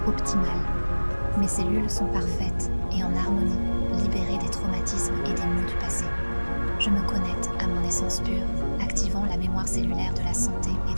optimal. Mes cellules sont parfaites et en harmonie, libérées des traumatismes et des maux du passé. Je me connecte à mon essence pure, activant la mémoire cellulaire de la santé et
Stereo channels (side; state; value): both; inverted; correlation -1.00